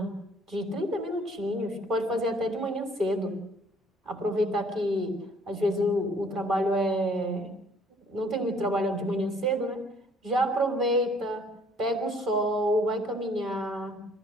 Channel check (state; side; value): normal; both; correlation 0.59